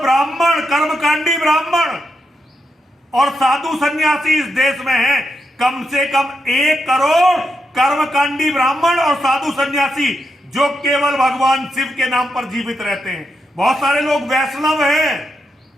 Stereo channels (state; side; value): normal; both; correlation 0.83